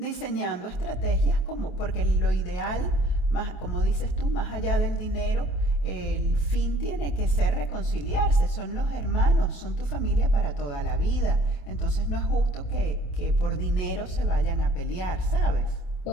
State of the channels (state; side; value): late; right; 28 ms